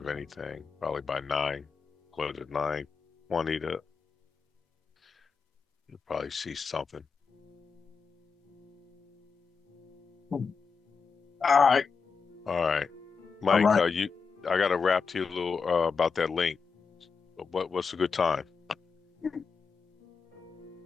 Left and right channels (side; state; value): right; quieter; 5.4 dB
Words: anything. Probably by 9, close at 9:20 to you'll probably see something. All right. All right, All Mike. right. I gotta rap to you a little about that link. What's a good time?